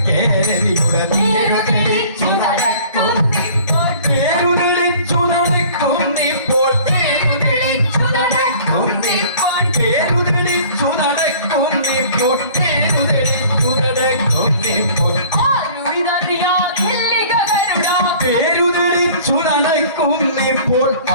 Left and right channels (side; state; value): both; inverted; correlation -0.49